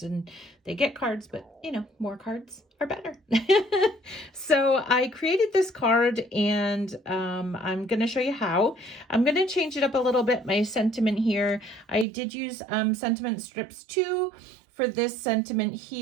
and they get cards, but you know, more cards are better. So I created this card and I'm going to show you how. I'm going to change it up a little bit, my sentiment here. I did use sentiment strips too for this sentiment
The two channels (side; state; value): left; drops out; at 12.1 s